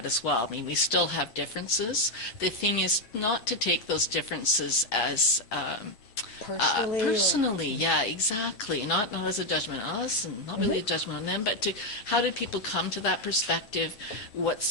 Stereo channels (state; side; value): late; right; 9.2 ms